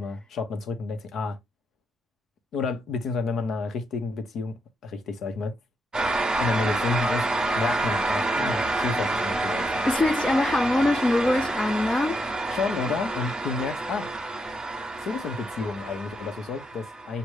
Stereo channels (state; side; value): normal; both; correlation 0.80